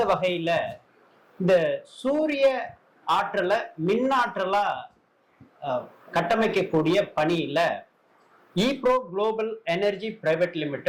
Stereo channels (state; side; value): identical; both; correlation 1.00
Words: வகையில இந்த சூரிய ஆற்றலை மின்னாற்றலா கட்டமைக்கக்கூடிய பணியில ஈப்ரோ குளோபல் எனர்ஜி பிரைவேட்